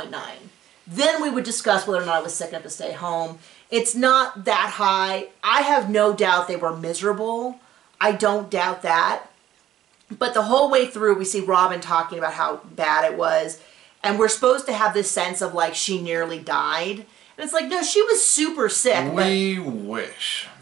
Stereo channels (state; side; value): quieter; left; 12.2 dB